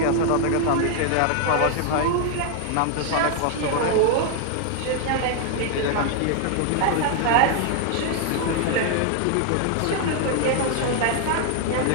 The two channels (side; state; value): both; different; correlation 0.00